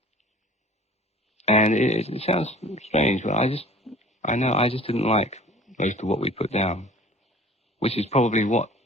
And it sounds strange, but I just didn't like most of what we put down, which is probably what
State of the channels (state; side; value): normal; both; correlation 0.47